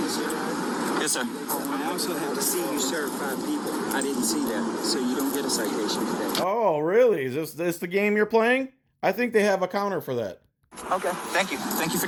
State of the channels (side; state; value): both; identical; correlation 1.00